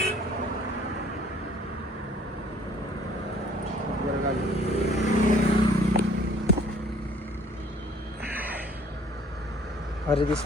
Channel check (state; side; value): normal; both; correlation 0.56